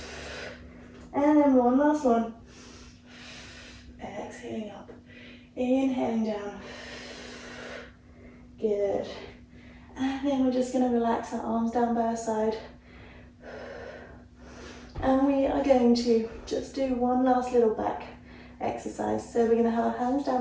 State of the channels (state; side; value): identical; both; correlation 1.00